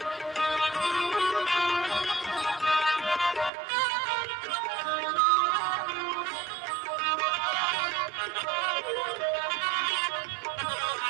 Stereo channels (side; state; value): left; drops out; at 3.5 s